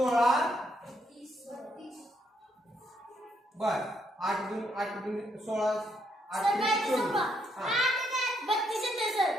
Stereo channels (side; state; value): both; normal; correlation 0.74